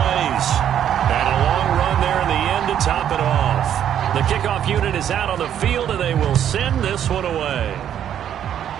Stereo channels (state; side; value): quieter; left; 9.9 dB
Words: And a long run there in the end to top it off. The kickoff unit is out on the field, and they will send this one away.